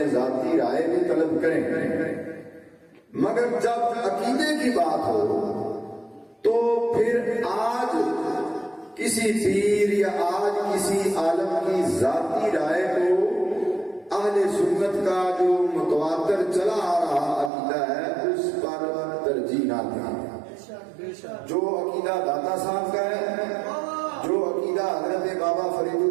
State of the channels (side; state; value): left; drops out; at 17.5 s